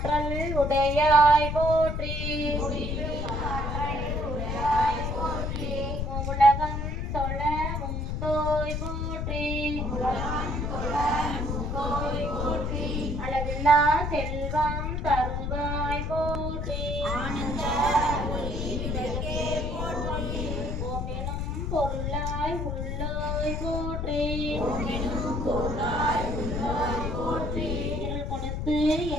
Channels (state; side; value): noise; left; rumble, 2 dB below the sound